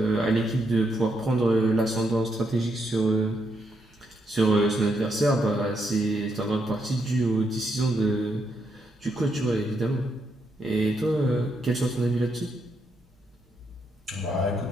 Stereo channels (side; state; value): both; normal; correlation 0.79